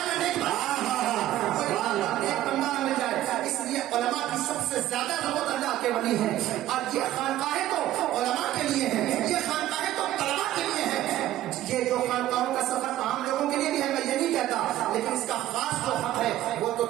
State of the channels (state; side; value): quieter; left; 13.8 dB